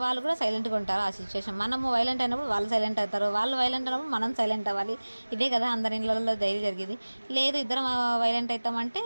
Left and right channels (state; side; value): inverted; both; correlation -1.00